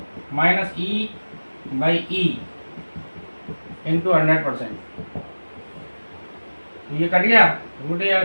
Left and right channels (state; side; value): inverted; both; correlation -1.00